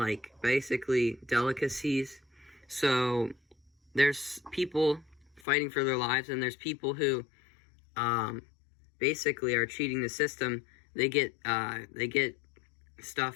basically delicacies. So there's people fighting for their lives, and there's people who basically are cheating the system. They get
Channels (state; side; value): drops out; right; at 5.4 s